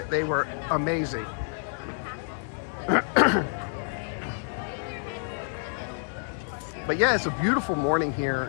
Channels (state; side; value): silent; right; 59 dB below the other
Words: They were amazing. But yeah, it's a beautiful morning